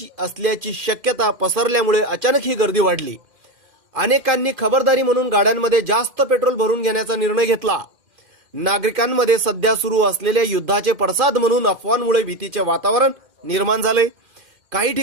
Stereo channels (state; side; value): late; left; 2.1 ms